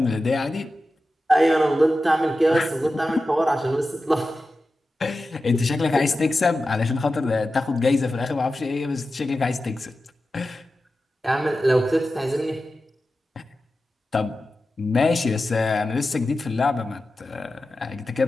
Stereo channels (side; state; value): both; normal; correlation 0.93